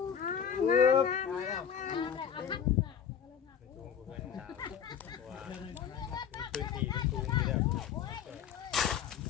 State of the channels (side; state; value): right; quieter; 8.2 dB